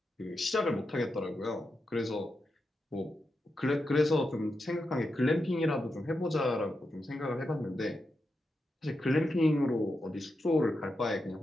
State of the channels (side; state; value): both; normal; correlation 0.87